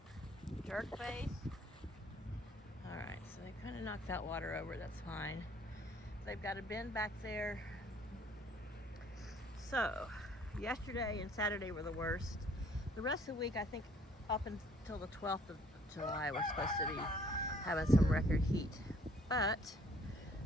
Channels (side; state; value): both; normal; correlation 0.60